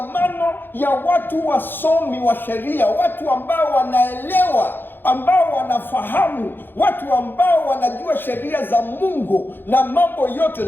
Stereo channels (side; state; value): right; late; 0.098 ms